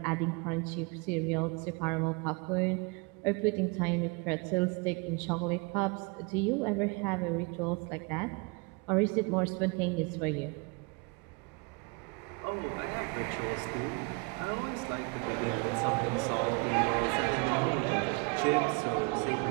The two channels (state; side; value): quieter; left; 29.8 dB